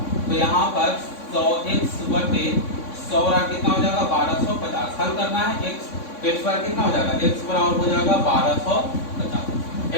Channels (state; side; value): late; right; 3.6 ms